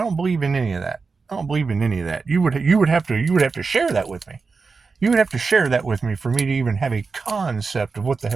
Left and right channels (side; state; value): left; quieter; 4.6 dB